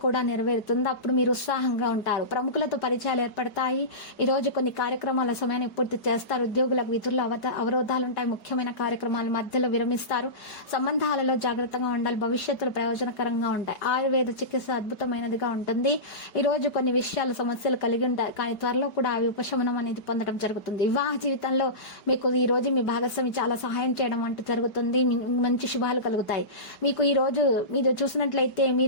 కూడా నెరవేరుతుంది. అప్పుడు మీరు ఉత్సాహంగా ఉంటారు. ప్రముఖులతో పరిచయాలు ఏర్పడతాయి. ఈ రోజు కొన్ని కార్యక్రమాల సమయాన్ని పూర్తి చేస్తారు. ఉద్యోగులకు విధుల్లో అవరోధాలుంటాయి. ముఖ్యమైన కార్యక్రమాల మధ్యలో విరమిస్తారు. సంబంధాలలో జాగ్రత్తగా ఉండాలి. భవిష్యత్తులో ప్రయోజనకరంగా ఉంటాయి. ఆయుర్వేద చికిత్స అద్భుతమైనదిగా ఉంటుంది. ఈ రోజు కొన్ని విషయాలు సమస్యలు కలిగి ఉంటాయి, కానీ త్వరలో కూడా అవి ఉపశమనం అనేది పొందడం జరుగుతుంది. వివాహ జీవితంలో మీకు ఈ రోజు మీ భాగస్వామి చాలా సహాయం చేయడం అంటూ జరుగుతుంది. మంచి శుభాలు కలుగుతాయి. మీకు ఈ రోజు మీరు చూసినట్లయితే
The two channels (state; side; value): late; right; 4.8 ms